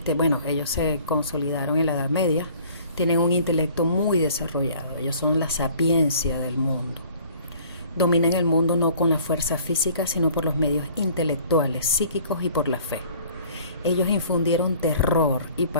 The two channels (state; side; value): inverted; both; correlation -0.53